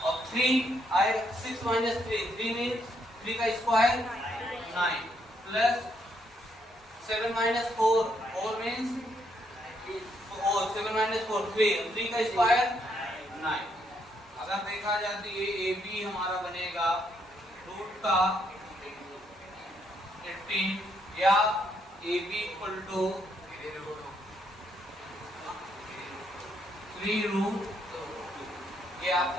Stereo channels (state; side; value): normal; both; correlation 0.74